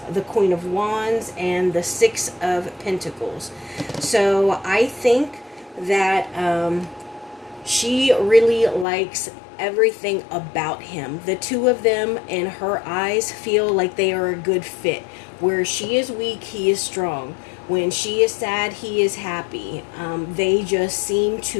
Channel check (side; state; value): right; drops out; at 8.8 s